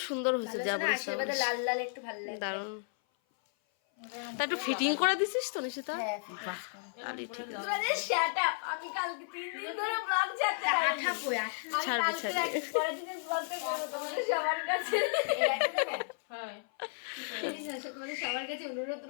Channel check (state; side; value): silent; right; 56 dB below the other